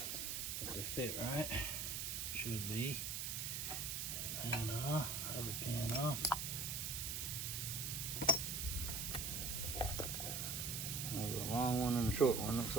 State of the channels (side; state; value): right; noise; hiss, 2 dB below the sound